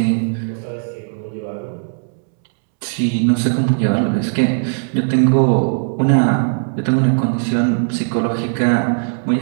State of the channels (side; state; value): left; silent; 67 dB below the other